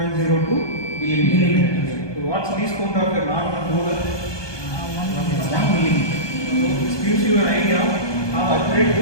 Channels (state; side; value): late; right; 1.2 ms